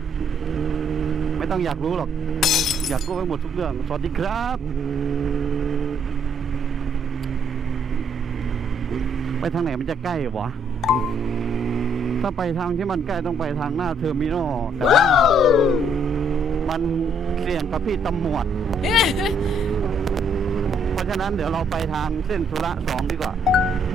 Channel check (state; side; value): normal; both; correlation 0.69